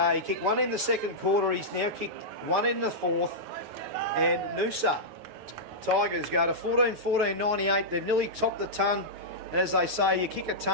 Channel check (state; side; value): late; left; 9.4 ms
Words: he kicked one in the second quarter. He's now kicked one in the fourth, and Noosa Tigers go to 14-14-98. They've nearly topped the ton. As they say, you kick a